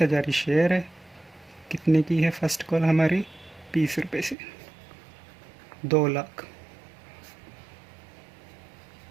ही शेयर है। कितने की है फर्स्ट कॉल हमारी? 20 रुपये से। 2 लाख।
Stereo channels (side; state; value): left; drops out; at 4.4 s